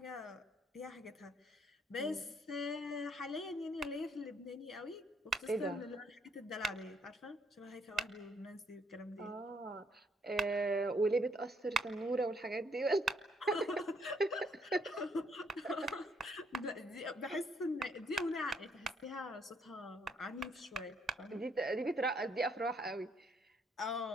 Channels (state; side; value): normal; both; correlation 0.69